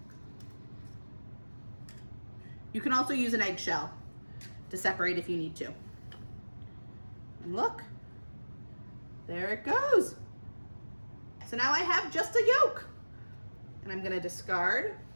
You can also use an eggshell to separate if you need to. And look, there it goes. So now I have just a yolk. And I'm gonna discard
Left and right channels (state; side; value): inverted; both; correlation -1.00